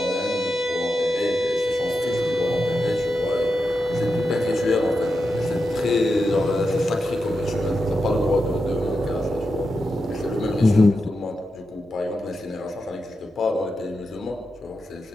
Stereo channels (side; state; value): both; normal; correlation 0.88